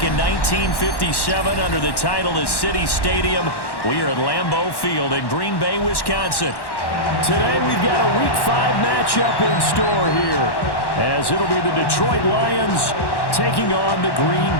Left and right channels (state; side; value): late; right; 1.1 ms